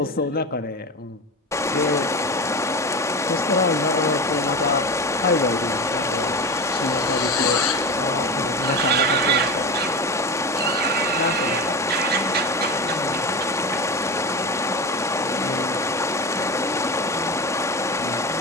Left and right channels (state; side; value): normal; both; correlation 0.24